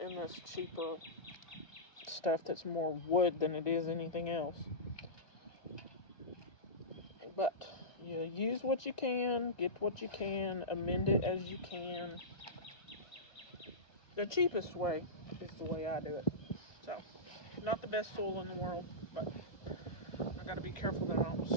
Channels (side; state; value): right; late; 1.5 ms